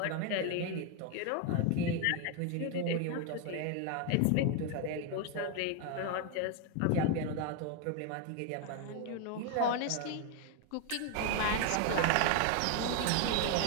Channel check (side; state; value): both; different; correlation 0.01